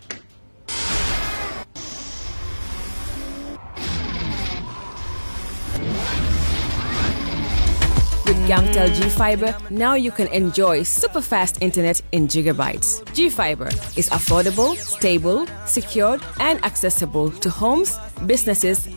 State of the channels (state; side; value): inverted; both; correlation -1.00